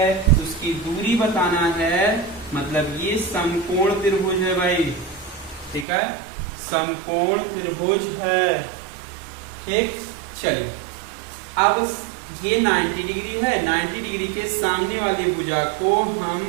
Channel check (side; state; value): left; drops out; at 5.9 s